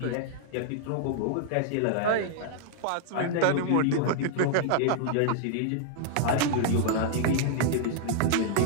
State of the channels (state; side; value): different; both; correlation -0.01